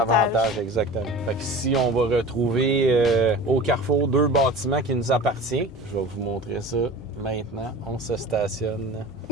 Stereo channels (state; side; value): normal; both; correlation 0.38